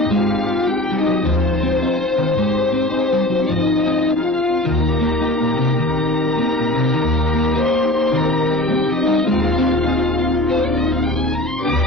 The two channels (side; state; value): both; normal; correlation 0.40